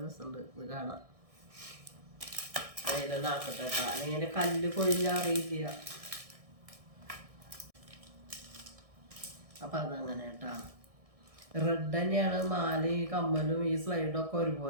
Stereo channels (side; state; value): left; late; 1.6 ms